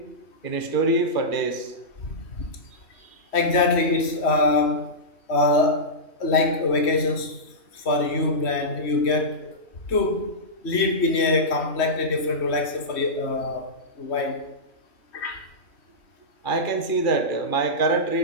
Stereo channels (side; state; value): right; late; 3.1 ms